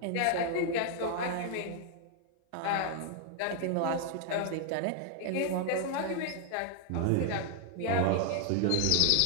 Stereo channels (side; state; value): both; different; correlation 0.00